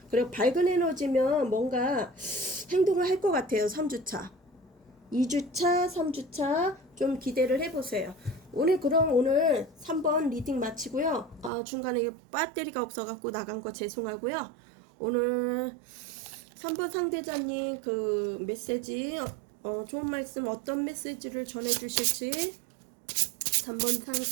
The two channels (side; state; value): left; drops out; at 11.5 s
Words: 그리고 밝은 에너지면 뭔가 행동을 할 것 같아요. 3주차 2주차 3주차 좀 기대를 해보세요. 그럼 오늘 3번 리딩 마치고요. 중간에 배터리가 없어갖고 나간 거 죄송하고요. 오늘 3번 상대자님 그 메시지 좋은 말씀 어떤 메시지를 전해주실지 3번